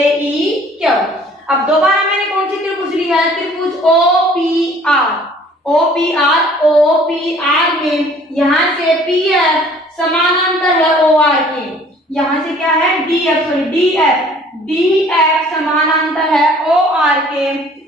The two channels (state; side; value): normal; both; correlation 0.54